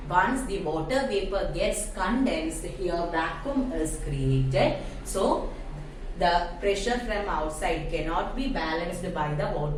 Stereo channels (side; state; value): both; identical; correlation 1.00